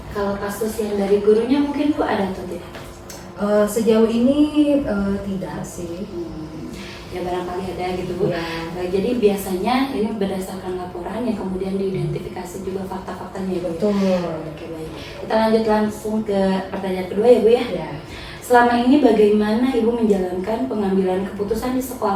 Kalau kasus yang dari gurunya mungkin Bu ada atau tidak? Sejauh ini tidak sih. ya barangkali ada gitu Bu. Ya. Jadi biasanya ini berdasarkan laporan yang kemudian diidentifikasi juga fakta-faktanya ya Bu. Betul. Oke baik. Kita lanjut langsung ke pertanyaan kedua ya Bu ya. Ya. Selama ini bagaimana Ibu menjalankan pengambilan keputusan di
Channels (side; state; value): both; identical; correlation 1.00